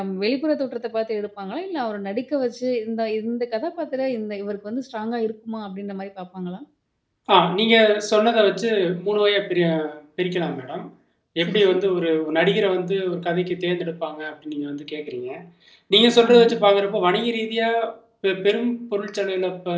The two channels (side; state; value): both; identical; correlation 1.00